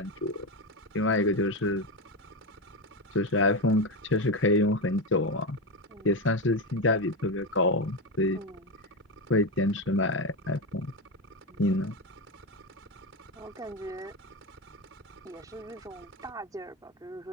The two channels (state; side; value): normal; both; correlation 0.13